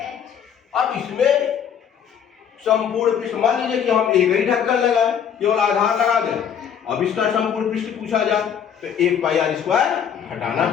अब इसमें संपूर्ण पृष्ठ, मान लीजिए कि हम एक ही ढक्कन लगाए, केवल आधार लगा दें। अब इसका संपूर्ण पृष्ठ पूछा जाए तो 1 पाई आर स्क्वायर हटाना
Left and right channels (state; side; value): quieter; right; 8.2 dB